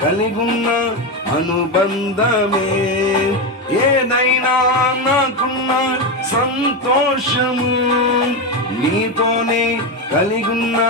కలిగున్న అనుబంధమే ఏదైనా నాకున్న సంతోషము నీతోనే కలిగున్న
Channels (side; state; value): both; normal; correlation 0.12